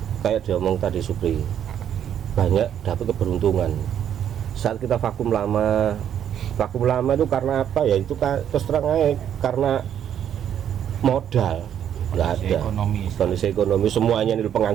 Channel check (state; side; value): quieter; left; 9.6 dB